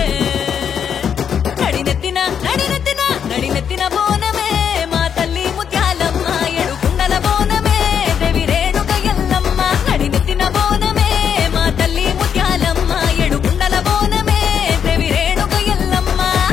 నడినెత్తిన బోనమే మా తల్లి ముత్యాలమ్మ ఎడుకుండల బోనమే దేవి రేణుక ఎల్లమ్మ నడినెత్తిన బోనమే మా తల్లి ముత్యాలమ్మ ఎడుకుండల బోనమే దేవి రేణుక ఎల్లమ్మ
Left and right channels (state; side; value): quieter; right; 7.9 dB